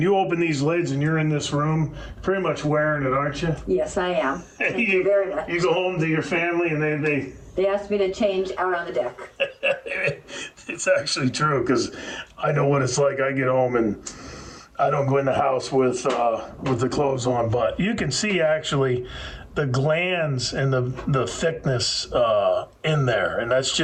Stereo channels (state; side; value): identical; both; correlation 1.00